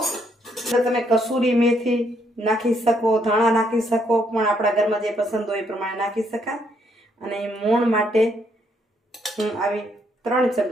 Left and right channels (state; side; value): normal; both; correlation 0.72